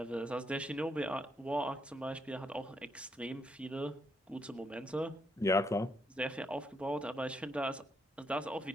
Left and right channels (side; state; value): both; normal; correlation 0.76